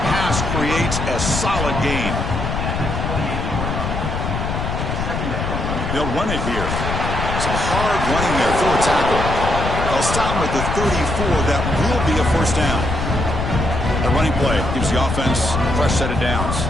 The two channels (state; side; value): noise; left; rumble, 3 dB below the sound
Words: pass creates a solid gain. They'll run it here. It's a hard running there for a tackle. They'll stop him at the 34. That will be a first down. The running play gives the offense a fresh set of downs.